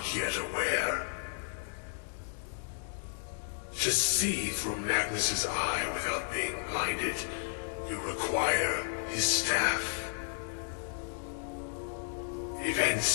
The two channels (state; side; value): silent; right; digital silence